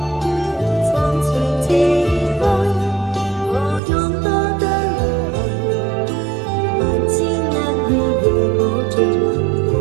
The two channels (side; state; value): left; drops out; at 3.8 s